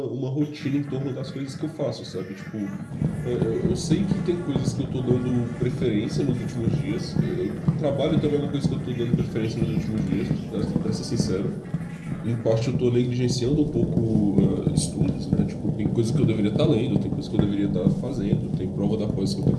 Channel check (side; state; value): both; identical; correlation 1.00